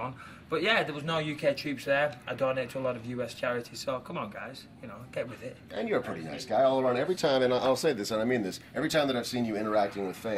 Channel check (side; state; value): both; identical; correlation 1.00